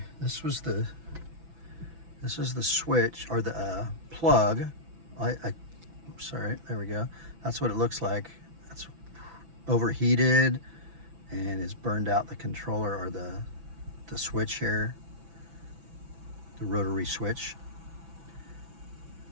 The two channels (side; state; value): left; late; 6.0 ms